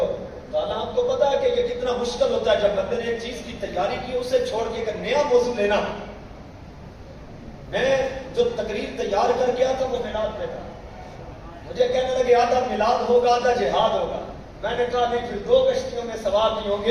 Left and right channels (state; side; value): identical; both; correlation 1.00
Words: کہا آپ کو پتا ہے کہ یہ کتنا مشکل ہوتا ہے جب بندے نے ایک چیز کی تیاری کی اسے چھوڑ کے ایک نیا موضوع لینا. میں جو تقریر تیار کر گیا تھا وہ میلاد پہ تھا. مجھے کہنے لگے آدھا میلاد ہوگا آدھا جہاد ہوگا. میں نے کہا نہیں, پھر 2 کشتیوں میں سوار نہیں ہوں